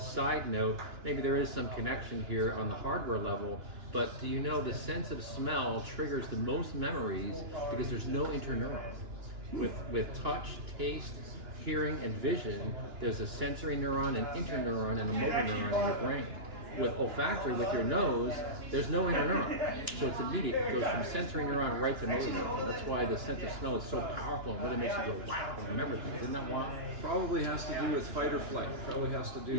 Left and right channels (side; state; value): left; late; 2.9 ms